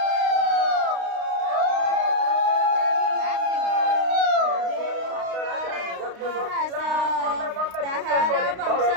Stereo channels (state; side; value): late; left; 32 ms